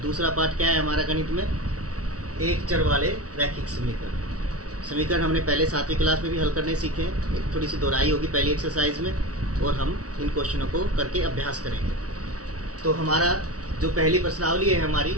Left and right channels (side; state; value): left; late; 0.67 ms